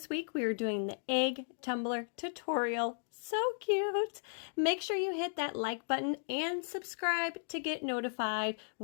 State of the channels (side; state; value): right; silent; digital silence